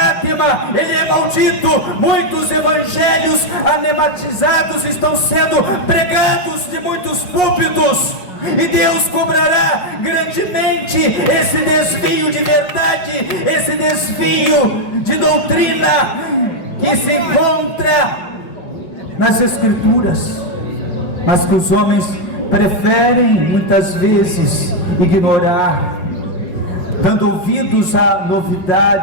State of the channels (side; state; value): right; late; 5.6 ms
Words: ele é maldito. Muitos evangelhos anematizados estão sendo pregados de muitos púlpitos, e Deus cobrará grandemente esse desvio de verdade, esse desvio de doutrina que se encontra nas Escrituras, mas que os homens preferem muitas vezes ignorar, dando ouvidos a